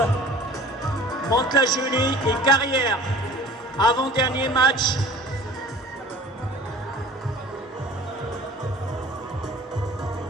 Mantes-la-Jolie et Carrière, avant-dernier match.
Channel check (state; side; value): normal; both; correlation 0.44